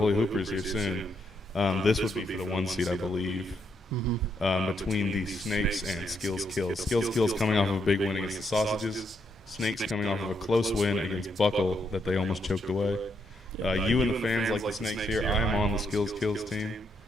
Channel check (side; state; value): both; normal; correlation 0.77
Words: Hoopers here soon, this would be for the 1 seed, I believe. Between the Snakes and Skills Kills. Skills Kills coming off of a big win against the Sausages. Snakes coming off of a close win against Buckle that they almost choked away. You and the fans like the Snakes here. I am on the Skills Kills team.